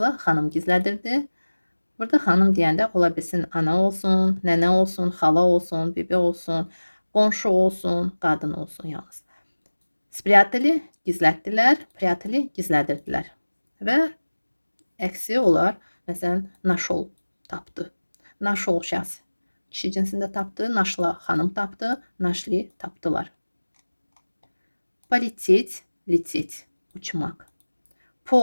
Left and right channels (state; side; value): inverted; both; correlation -1.00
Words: xanım gizlədirdi. Burada xanım deyəndə ola bilsin ana olsun, nənə olsun, xala olsun, bibi olsun, qonşu olsun, qadın olsun yalnız. Спрятали, gizlətdilər, прятали, gizlədirdilər. Və əksi olar, məsələn, нашел, tapdı. Нашел şəxs kişi cinsində tapdı, нашла xanım tapdı, нашли tapdılar. Полететь, лететь, uçmaq.